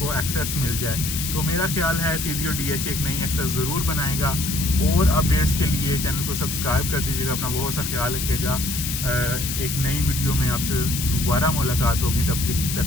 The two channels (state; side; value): noise; left; hiss, 4 dB below the sound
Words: एक्सेस मिल जाए। तो मेरा ख्याल है CDO-DH एक नई एक्सेस ज़रूर बनाएगा। और अपडेट्स के लिए चैनल को सब्सक्राइब कर दीजिएगा। अपना बहुत सा ख्याल रखिएगा। एक नई वीडियो में आपसे दोबारा मुलाकात होगी, तब